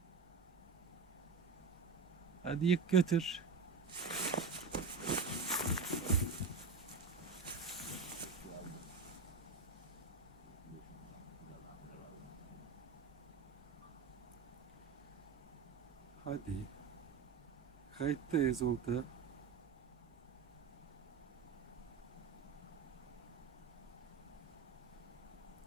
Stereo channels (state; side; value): quieter; left; 5.0 dB